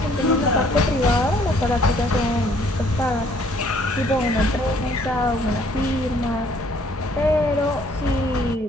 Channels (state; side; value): normal; both; correlation 0.61